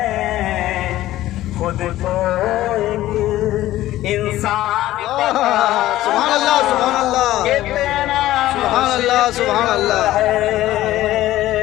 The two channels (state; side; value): quieter; right; 15.0 dB